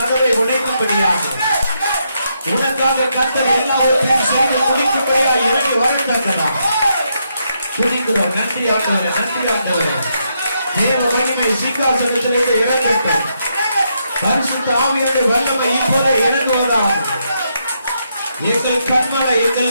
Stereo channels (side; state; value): both; inverted; correlation -0.79